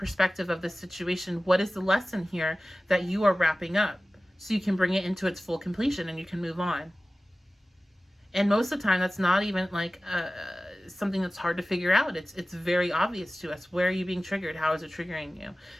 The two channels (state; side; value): normal; both; correlation 0.96